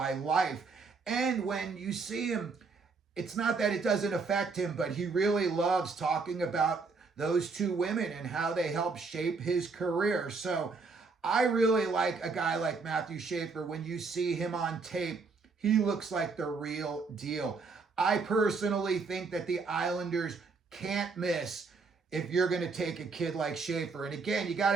life. And when you see him, it's not that it doesn't affect him, but he really loves talking about those two women and how they helped shape his career. So I really like a guy like Matthew Schaeffer. When you see him on tape, he looks like the real deal. I personally think that the Islanders can't miss if you're going to take a kid like Schaeffer. And again, you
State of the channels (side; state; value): left; quieter; 4.5 dB